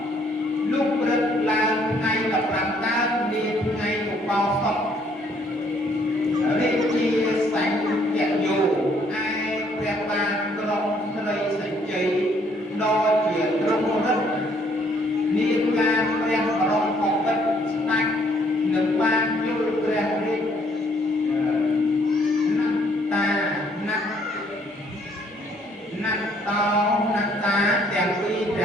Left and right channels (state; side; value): normal; both; correlation 0.65